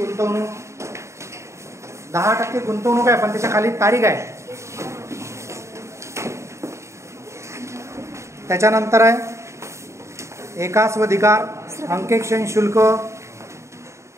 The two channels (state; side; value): late; left; 0.14 ms